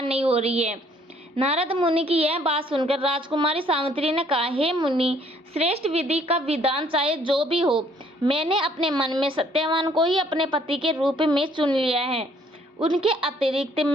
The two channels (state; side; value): normal; both; correlation 0.62